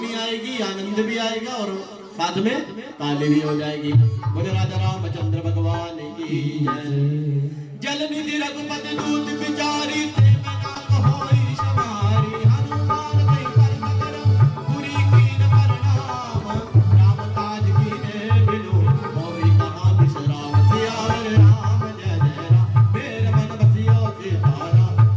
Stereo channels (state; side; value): identical; both; correlation 1.00